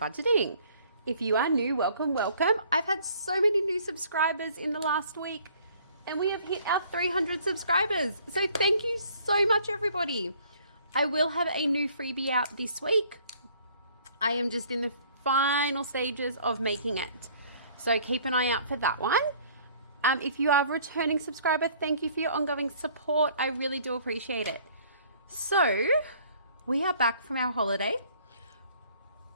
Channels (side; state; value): both; inverted; correlation -0.57